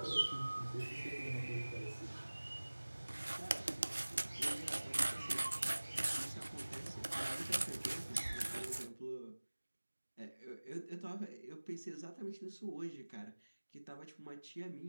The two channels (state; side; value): inverted; both; correlation -1.00